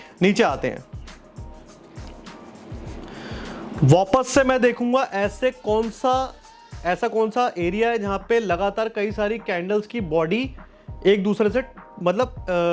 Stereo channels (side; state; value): both; identical; correlation 1.00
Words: नीचे आते हैं, वापस से मैं देखूंगा ऐसा कौन सा एरिया है जहां पे लगातार कई सारी कैंडल्स की बॉडी एक दूसरे से मतलब